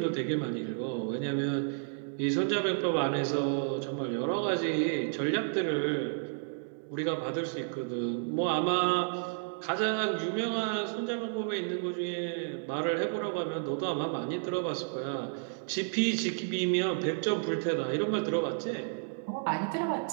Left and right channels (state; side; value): silent; left; digital silence